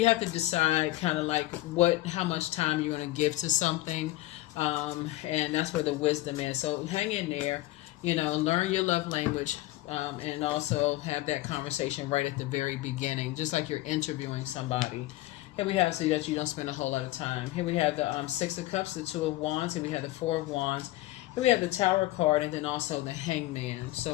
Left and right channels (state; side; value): quieter; right; 17.2 dB